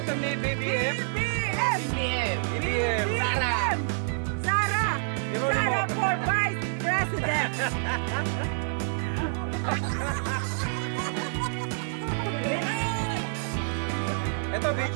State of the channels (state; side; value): silent; left; 57 dB below the other